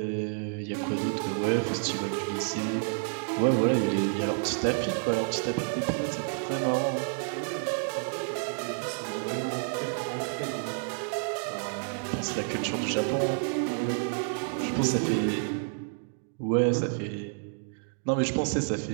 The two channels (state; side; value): silent; left; digital silence